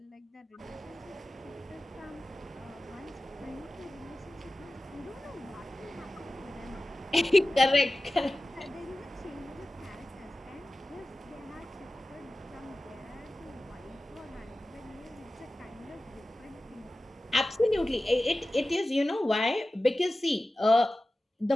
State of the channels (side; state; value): both; normal; correlation 0.95